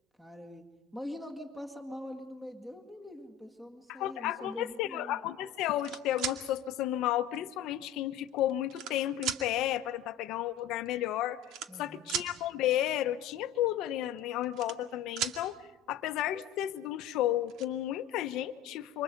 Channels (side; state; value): right; quieter; 8.6 dB